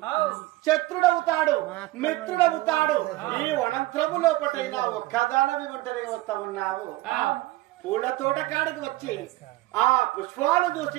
శత్రుడవుతాడు, మిత్రుడవుతాడు. ఈ వనంత్రము లోపటైనా ఒక్కదానవి ఒంటరిగా వస్తా ఉన్నావు. పూల తోట కాడికి వచ్చి ఆ పుష్పాలు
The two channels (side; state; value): left; quieter; 18.4 dB